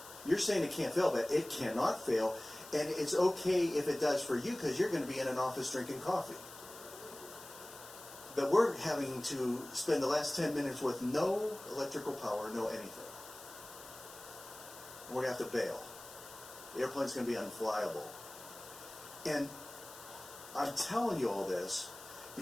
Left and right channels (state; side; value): noise; left; hiss, 16 dB below the sound